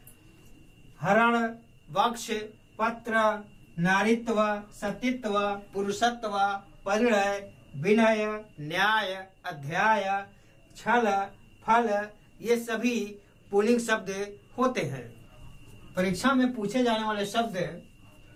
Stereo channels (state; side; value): identical; both; correlation 1.00